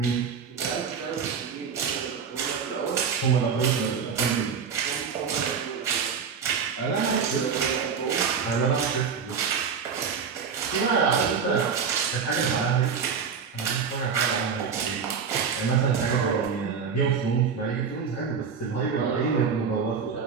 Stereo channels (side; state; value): left; quieter; 6.3 dB